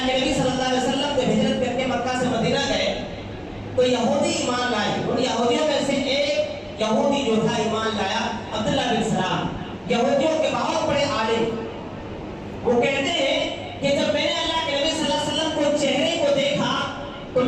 کے نبی صلی اللہ علیہ وسلم جب ہجرت کر کے مکہ سے مدینہ گئے تو یہودی ایمان لائے۔ ان یہودیوں میں سے ایک یہودی جو تھا ایمان لایا، عبداللہ بن سلام، یہودیوں کے بہت بڑے عالم۔ وہ کہتے ہیں کہ جب میں نے اللہ کے نبی صلی اللہ علیہ وسلم کو چہرے کو دیکھا تو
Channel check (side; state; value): both; identical; correlation 1.00